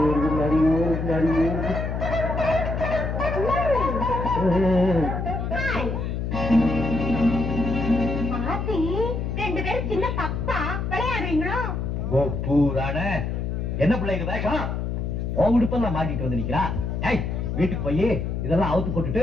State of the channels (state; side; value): noise; left; hum, 2 dB below the sound